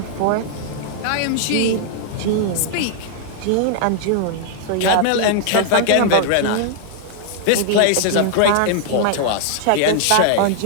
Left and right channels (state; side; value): different; both; correlation -0.01